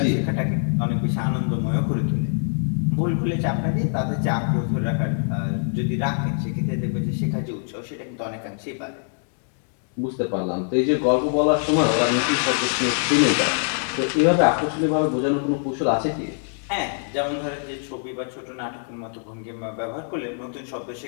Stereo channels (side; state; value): right; silent; 63 dB below the other